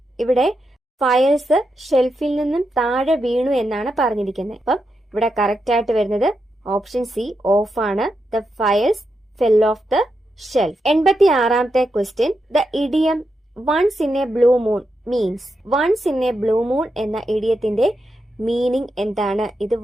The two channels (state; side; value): normal; both; correlation 0.85